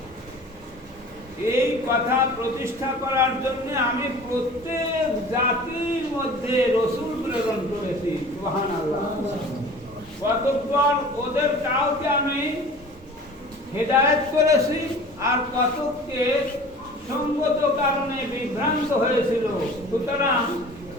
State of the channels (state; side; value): normal; both; correlation 0.42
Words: এই কথা প্রতিষ্ঠা করার জন্য আমি প্রত্যেক জাতির মধ্যে রাসূল প্রেরণ করেছি। সুবহানাল্লাহ। কতবার ওদের কাউকে আমি হেদায়েত করেছি আর কতকে সঙ্গত কারণে বিভ্রান্ত হয়েছিল। সুতরাং